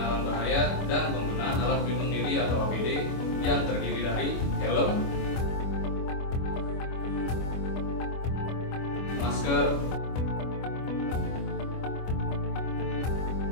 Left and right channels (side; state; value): right; late; 25 ms